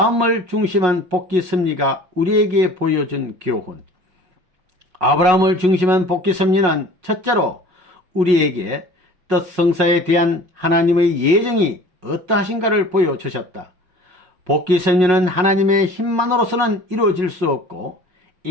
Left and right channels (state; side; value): late; left; 5.5 ms